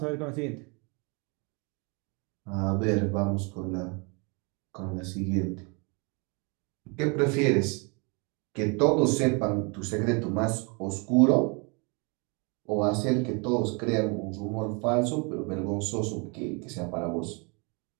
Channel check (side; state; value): left; quieter; 32.3 dB